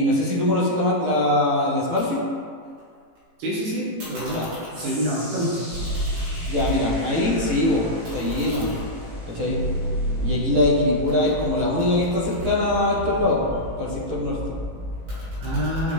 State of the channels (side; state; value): left; late; 18 ms